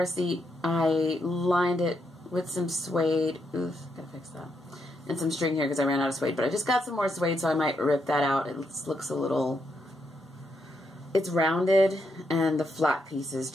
seat. I lined it with some suede. Oof, gotta fix that. And some string here because I ran out of suede. But I just got some more suede, so I might rip that out. It looks a little... It's rounded, and the flat pieces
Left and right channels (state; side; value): normal; both; correlation 0.79